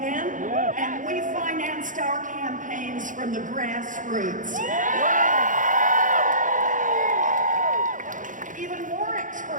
and we financed our campaigns from the grassroots. Even more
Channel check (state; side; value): late; left; 0.38 ms